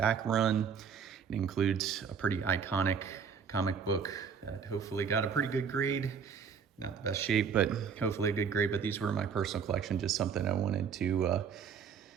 run. It includes a pretty iconic comic book that hopefully got a pretty good grade. Not the best shape, but hopefully a good grade. But these were my personal collection, just something I wanted to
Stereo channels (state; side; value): quieter; left; 6.7 dB